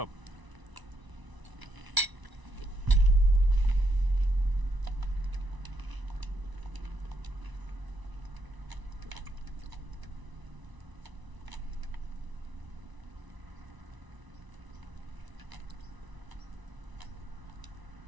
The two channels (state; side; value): late; left; 1.0 ms